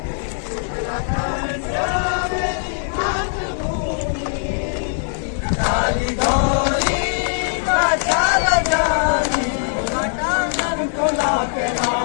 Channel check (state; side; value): silent; right; 58 dB below the other